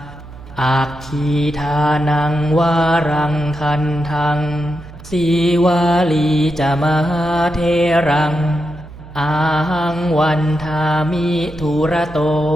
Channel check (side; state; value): right; noise; hum, 17 dB below the sound